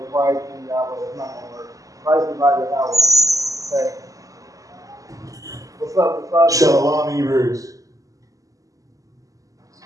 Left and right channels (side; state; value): left; late; 0.16 ms